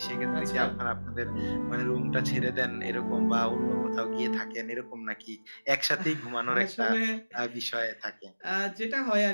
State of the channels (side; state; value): both; inverted; correlation -1.00